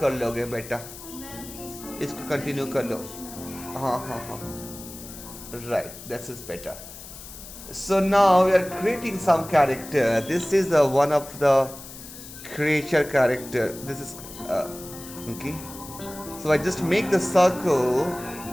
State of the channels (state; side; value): noise; left; hiss, 14 dB below the sound